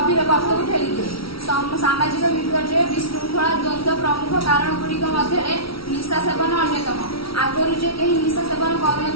गर्त को ठेली दिए। सामाजिक विपर्य विशृंखला द्वंद्व प्रमुख कारण गुड़िक मध्य निशा सेवन अन्यतम। आगुरी जे कहीं निशा सेवन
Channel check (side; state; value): right; late; 0.75 ms